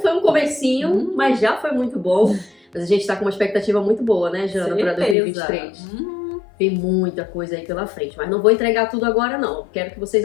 um comecinho, mas já foi muito bom. Mas a gente tá com uma expectativa muito boa, né, Jana, para 2023. Tem muita coisa aí pela frente, mas não vou entregar tudo agora, não. Quero que vocês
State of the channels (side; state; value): right; drops out; at 5.2 s